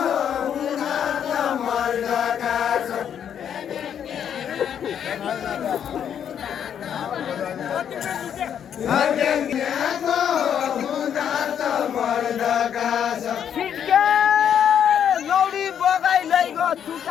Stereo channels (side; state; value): right; quieter; 8.8 dB